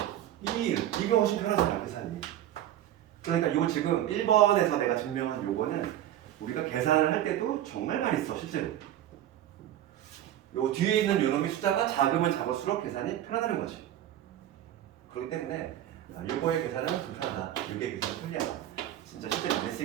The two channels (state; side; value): quieter; left; 12.2 dB